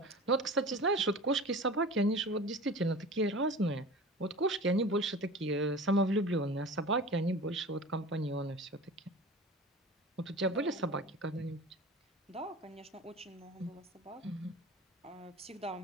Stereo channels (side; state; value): both; normal; correlation 0.36